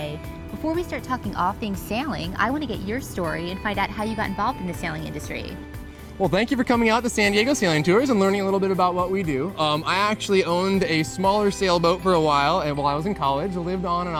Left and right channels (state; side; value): identical; both; correlation 1.00